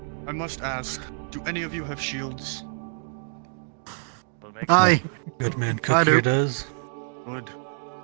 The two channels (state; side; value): silent; left; digital silence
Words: I must ask, do any of you have shields? Aye. Good man I Cook do. here does. Good.